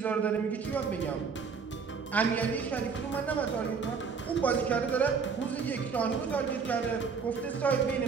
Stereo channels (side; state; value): left; quieter; 5.6 dB